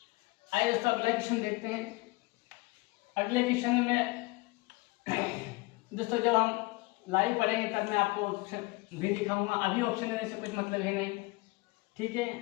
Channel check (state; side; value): quieter; right; 23.8 dB